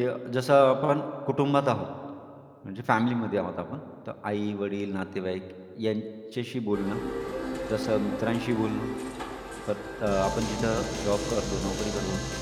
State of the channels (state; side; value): identical; both; correlation 1.00